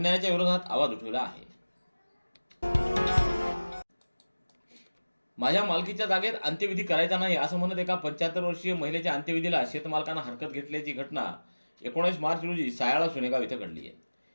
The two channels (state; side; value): inverted; both; correlation -1.00